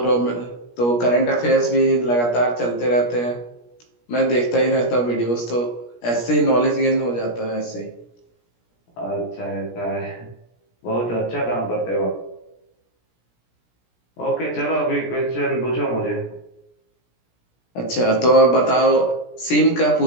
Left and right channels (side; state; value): right; late; 17 ms